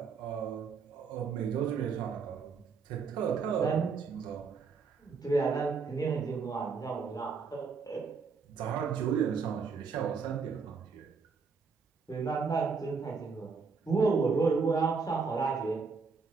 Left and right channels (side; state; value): left; quieter; 5.1 dB